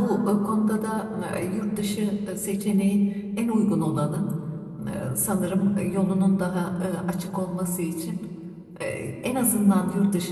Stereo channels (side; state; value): both; identical; correlation 1.00